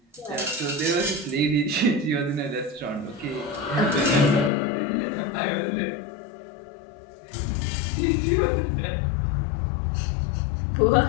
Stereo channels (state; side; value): drops out; right; at 4.5 s